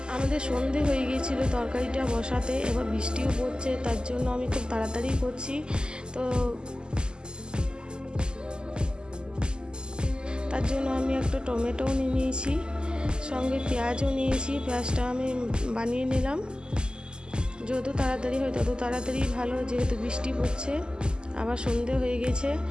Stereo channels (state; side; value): late; left; 0.047 ms